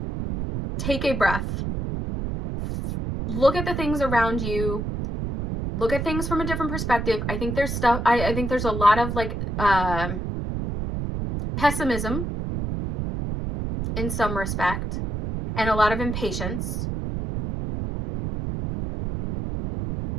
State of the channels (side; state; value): right; noise; rumble, 3 dB below the sound